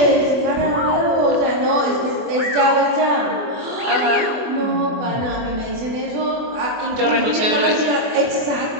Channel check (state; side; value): late; left; 24 ms